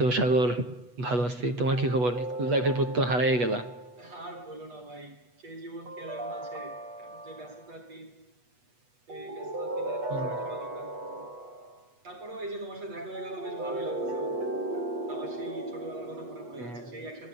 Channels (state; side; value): late; left; 8.2 ms